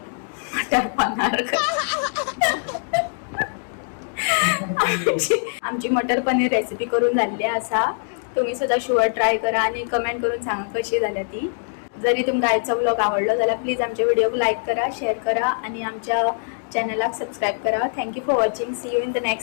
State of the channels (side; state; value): right; silent; digital silence